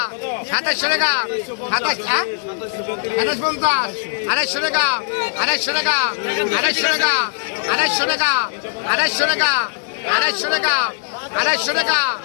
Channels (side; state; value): right; silent; digital silence